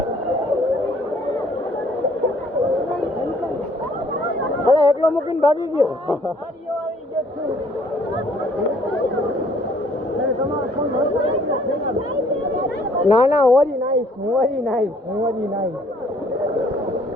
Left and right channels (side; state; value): both; normal; correlation 0.60